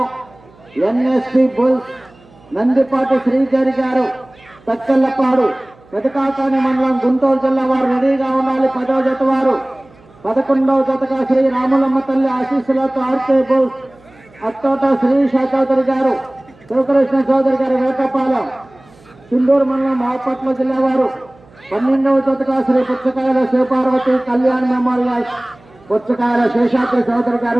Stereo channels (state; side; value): noise; right; hum, 27 dB below the sound